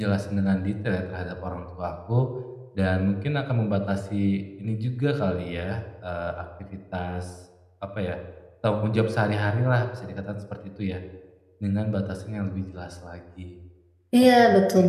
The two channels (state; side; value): identical; both; correlation 1.00